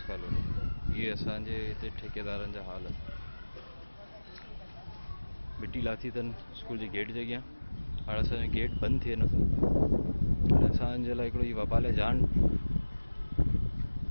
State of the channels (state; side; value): inverted; both; correlation -1.00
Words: कॉलोनी, ये असांजे हिते ठेकेदारनि जा हाल। मिट्टी लाथी अथनि स्कूल जे गेट जॻह, हाणे असांजो गेट बंदि थिए नथो। असांजे लाइ हिकिड़ो इहो वबाल जान